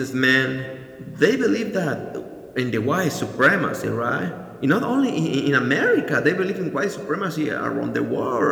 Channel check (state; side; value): identical; both; correlation 1.00